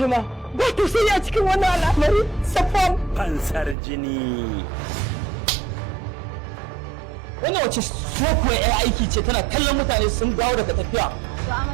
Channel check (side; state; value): left; drops out; at 3.8 s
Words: ma. Ba to sai a cikin wannan al'amari Safwan. Fansar jini. Wannan wace sokuwa ya aiki ce tana kallon mutane sun dawo daga tafiya. To